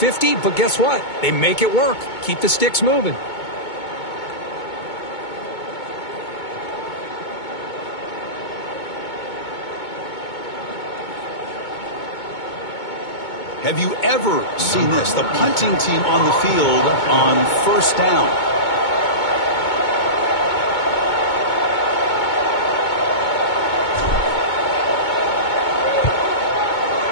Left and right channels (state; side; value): late; right; 2.2 ms